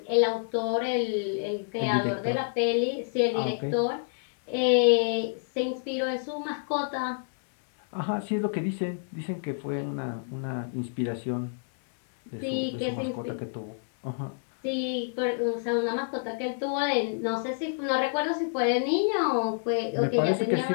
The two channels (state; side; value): silent; right; digital silence